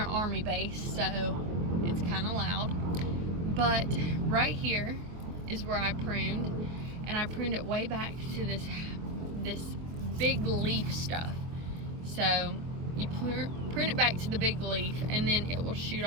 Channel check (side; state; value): left; late; 24 ms